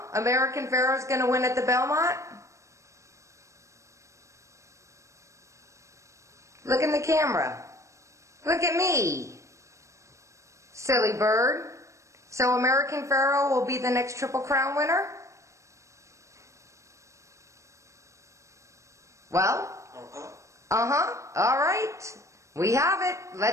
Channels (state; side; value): late; left; 0.15 ms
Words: American Pharoah's going to win at the Belmont? Look in the camera. Look at me. Silly bird. So American Pharoah will be the next Triple Crown winner? Well? All right. We have it.